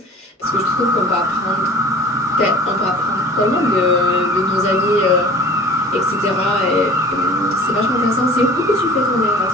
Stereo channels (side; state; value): both; normal; correlation 0.44